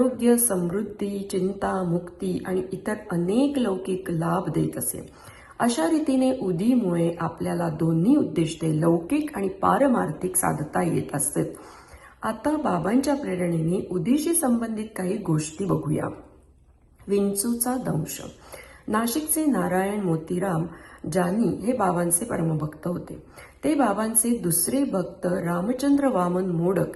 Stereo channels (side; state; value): both; identical; correlation 1.00